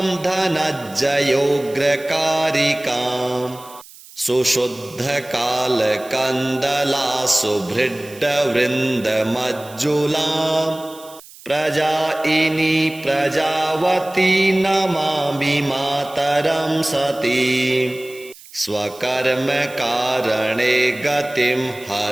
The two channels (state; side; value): noise; right; hiss, 20 dB below the sound